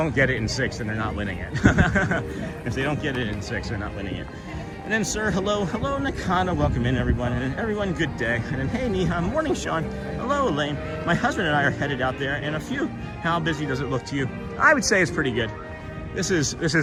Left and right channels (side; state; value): both; identical; correlation 1.00